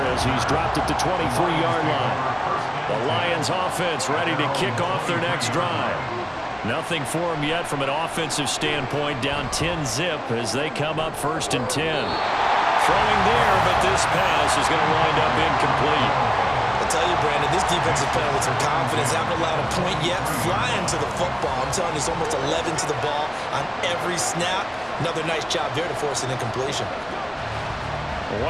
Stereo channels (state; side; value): identical; both; correlation 1.00